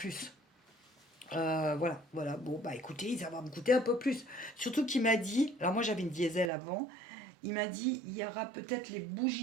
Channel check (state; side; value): drops out; left; at 6.5 s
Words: Voilà. Bon, bah écoutez, ça va me coûter un peu plus. Surtout qu'il m'a dit, alors moi j'avais une diesel avant, il m'a dit, il y aura peut-être les